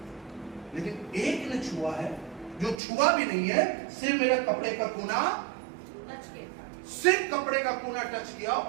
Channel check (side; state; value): left; drops out; at 2.8 s